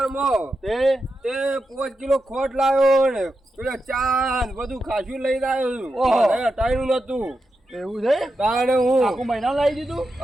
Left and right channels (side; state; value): both; normal; correlation 0.88